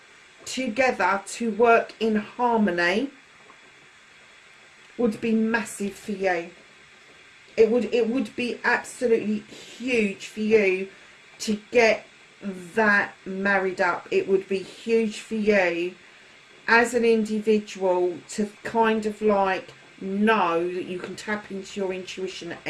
together to work in harmony would be massive for you. It would be absolutely huge for you to get that married up. It would be huge for you as an individual to kind of like know that you can tap into your intuition at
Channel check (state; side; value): identical; both; correlation 1.00